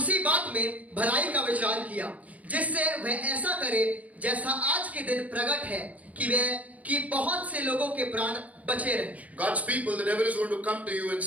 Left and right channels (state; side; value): late; left; 0.071 ms